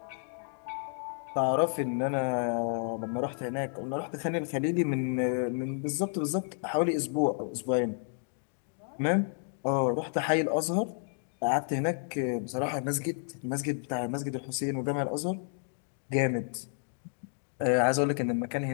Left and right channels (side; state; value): right; silent; 57 dB below the other